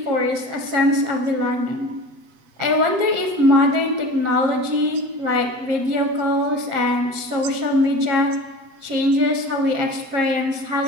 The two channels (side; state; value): left; late; 7.9 ms